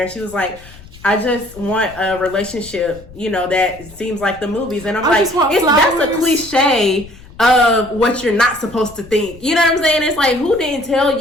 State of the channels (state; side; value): noise; left; rumble, 21 dB below the sound